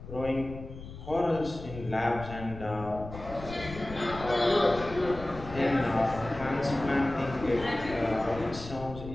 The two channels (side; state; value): left; noise; rumble, 12 dB below the sound